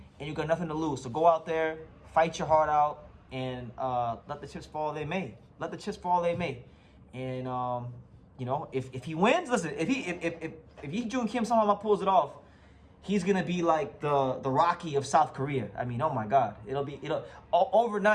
and you got nothing to lose. So go out there, fight your heart out, and let the chips fall they may. Let the chips fall they may. And you know, if he wins, listen, if Yijun Kim somehow pulls it off, he's gonna be like the Rocky of South Korea. I mean, oh my God,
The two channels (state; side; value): identical; both; correlation 1.00